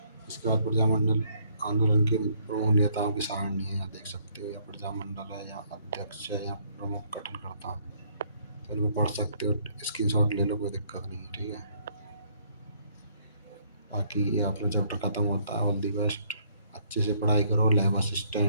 इसके बाद प्रजामंडल आंदोलन के प्रमुख नेताओं की सारणी है, यहाँ देख सकते हो, या प्रजामंडल है, या अध्यक्ष है, या प्रमुख गठनकर्ता। तो इनको पढ़ सकते हो, स्क्रीनशॉट ले लो, कोई दिक्कत नहीं है, ठीक है। बाकी ये अपना चैप्टर खत्म होता है। ऑल दी बेस्ट, अच्छे से पढ़ाई करो, लैब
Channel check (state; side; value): inverted; both; correlation -0.66